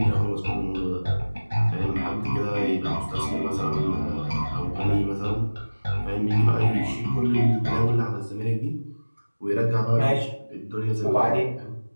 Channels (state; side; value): inverted; both; correlation -1.00